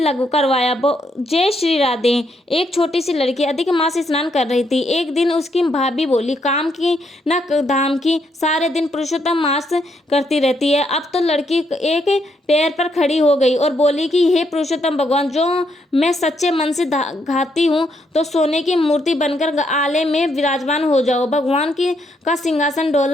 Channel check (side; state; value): both; normal; correlation 0.76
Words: करवाया। जय श्री राधे। एक छोटी सी लड़की अधिक मास स्नान कर रही थी। एक दिन उसकी भाभी बोली, काम की न धाम की, सारे दिन पुरुषोत्तम मास करती रहती है। अब तो लड़की एक पैर पर खड़ी हो गई और बोली कि हे पुरुषोत्तम भगवान, जो मैं सच्चे मन से घाती हूँ तो सोने की मूर्ति बनकर आले में विराजमान हो जाओ। भगवान का सिंहासन